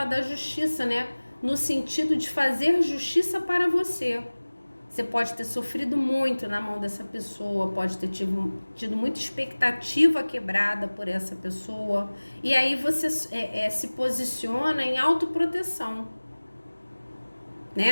da justiça, né? No sentido de fazer justiça para você. Você pode ter sofrido muito na mão dessa pessoa, pode ter tido muita expectativa quebrada por essa pessoa. E aí você se posiciona em autoproteção,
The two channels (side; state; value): both; inverted; correlation -1.00